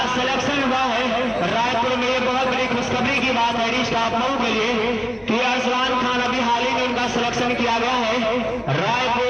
सिलेक्शन हुआ है, रायपुर में ये बहुत बड़ी खुशखबरी की बात है स्टाफ लोगों के लिए कि अरसलान खान अभी हाल ही में उनका सिलेक्शन किया गया है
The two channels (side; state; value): both; identical; correlation 1.00